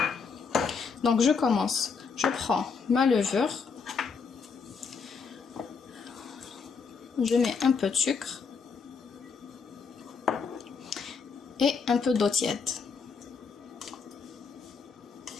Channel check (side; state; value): right; quieter; 5.4 dB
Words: Donc je commence. Je prends ma levure. Je mets un peu de sucre et un peu d'eau tiède.